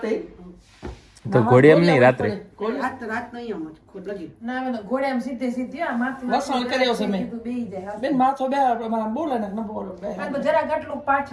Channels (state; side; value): identical; both; correlation 1.00